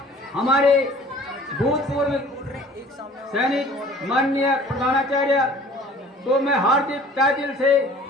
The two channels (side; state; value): both; normal; correlation 0.49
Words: हमारे भूतपूर्व सैनिक माननीय प्रधानाचार्य को मैं हार्दिक तहे दिल से